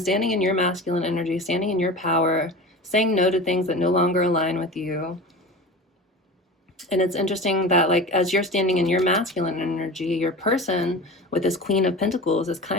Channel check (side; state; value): both; normal; correlation 0.33